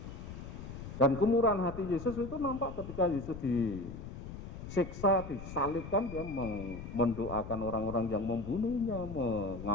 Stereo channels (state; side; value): noise; left; rumble, 10 dB below the sound